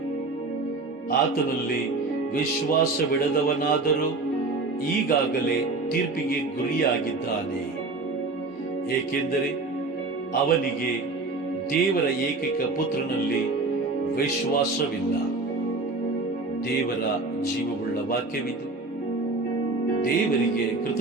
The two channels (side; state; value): left; quieter; 3.5 dB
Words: ಆತನಲ್ಲಿ ವಿಶ್ವಾಸವಿಡದವನಾದರೂ ಈಗಾಗಲೇ ತೀರ್ಪಿಗೆ ಗುರಿಯಾಗಿದ್ದಾನೆ, ಏಕೆಂದರೆ ಅವನಿಗೆ ದೇವರ ಏಕೈಕ ಪುತ್ರನಲ್ಲಿ ವಿಶ್ವಾಸವಿಲ್ಲ. ದೇವರ ಜೀವವುಳ್ಳ ವಾಕ್ಯವಿದು. ದೇವರಿಗೆ